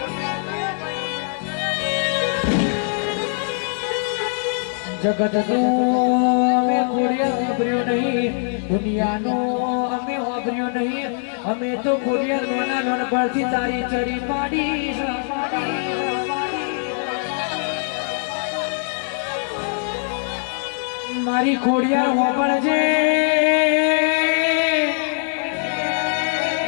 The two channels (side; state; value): right; silent; digital silence